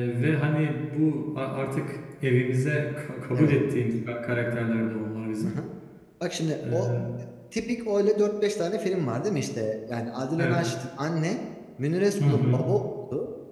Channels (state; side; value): identical; both; correlation 1.00